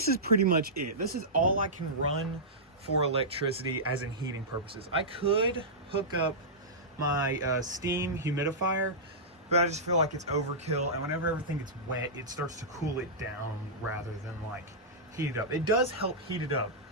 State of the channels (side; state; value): both; normal; correlation -0.14